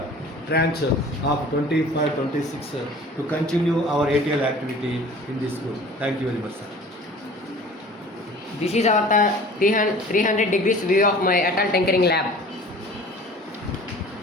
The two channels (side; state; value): both; normal; correlation 0.45